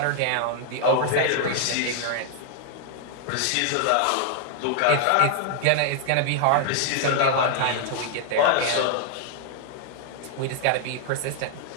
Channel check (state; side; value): different; both; correlation 0.00